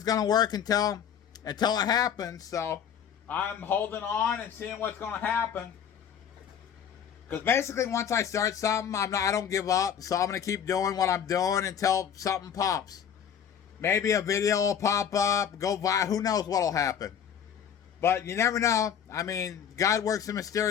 going to work until it happens. So I'm holding on and seeing what's going to happen. Because basically, once I start something, I don't give up. So I'm going to keep doing what I'm doing until something pops. Maybe a video will pop up, go by. Who knows what will happen? But you never know. I mean, God works in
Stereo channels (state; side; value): quieter; right; 8.4 dB